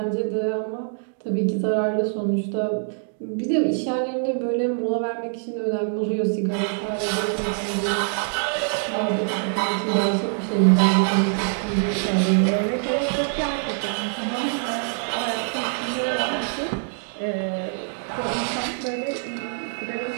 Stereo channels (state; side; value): silent; left; digital silence